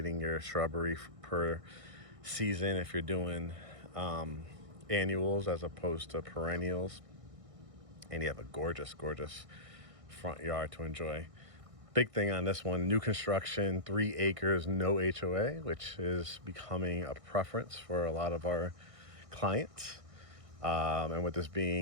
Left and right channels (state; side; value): late; left; 1.6 ms